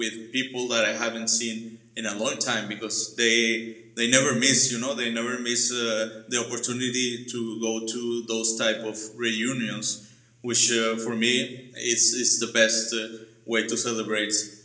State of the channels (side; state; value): both; identical; correlation 1.00